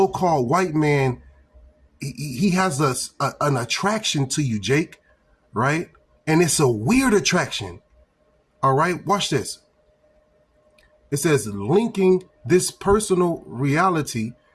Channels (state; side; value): identical; both; correlation 1.00